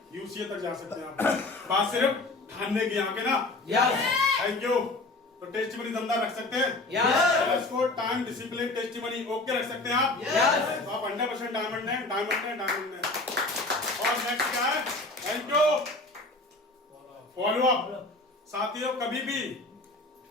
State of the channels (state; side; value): quieter; right; 3.0 dB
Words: यूसीए तक जा सकते हैं। आप बात सिर्फ ठानने की, आके ना। Thank you. तो टेस्टिमनी दमदार रख सकते हैं, इसको टाइम डिसिप्लिन टेस्टिमनी ओके रख सकते हैं आप। तो आप 100% डायमंड है, डायमंड है, डायमंड है। और नेक्स्ट क्या है? Thank you. Follow up. साथियों कभी भी